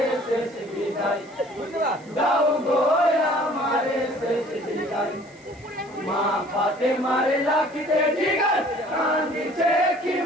শেষ বিদায় দাও গো আমারে শেষ বিদায় মা পাতে মারে লাগতে জিগার কান্দিছে কি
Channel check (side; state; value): right; noise; hiss, 28 dB below the sound